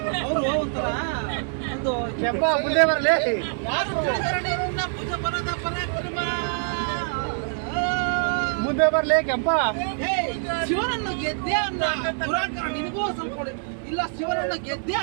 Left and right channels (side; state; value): left; silent; 62 dB below the other